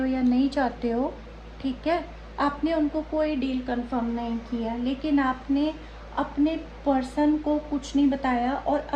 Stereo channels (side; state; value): both; identical; correlation 1.00